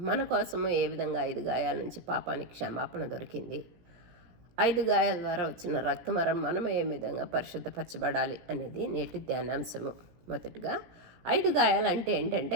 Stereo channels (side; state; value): left; late; 17 ms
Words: మన కోసము ఏ విధంగా 5 గాయాల నుంచి పాపానికి క్షమాపణ దొరికింది, 5 గాయాల ద్వారా వచ్చిన రక్తమరం మనం ఏ విధంగా పరిశుద్ధపరచబడాలి అనేది నేటి ధ్యానాంశము. మొదటిగా 5 గాయాలు అంటే